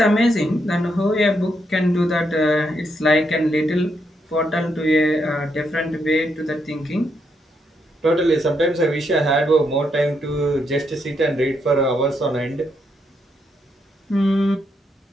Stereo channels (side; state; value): both; normal; correlation 0.78